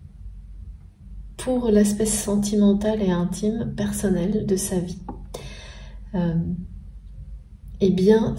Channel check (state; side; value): identical; both; correlation 1.00